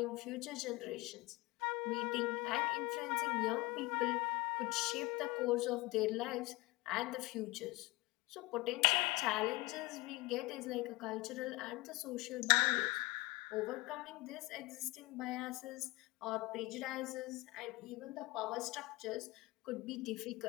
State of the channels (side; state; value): right; quieter; 22.1 dB